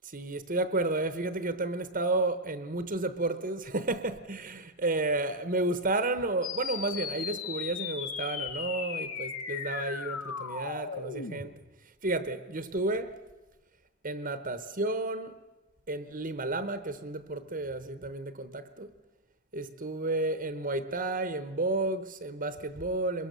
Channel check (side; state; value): both; normal; correlation 0.00